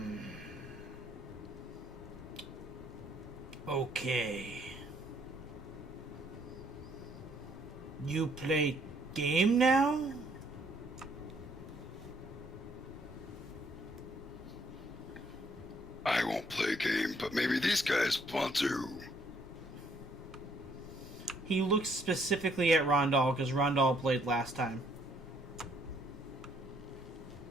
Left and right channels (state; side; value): normal; both; correlation 0.66